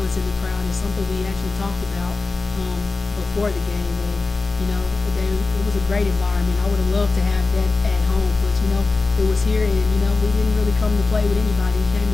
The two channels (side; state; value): right; quieter; 3.8 dB